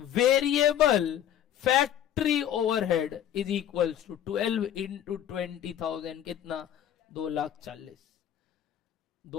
factory overhead is equals to 12 into 20,000, कितना? 2,40,000।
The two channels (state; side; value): quieter; right; 10.5 dB